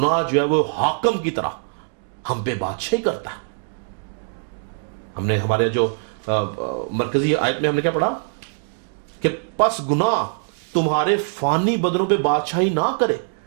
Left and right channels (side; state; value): left; silent; digital silence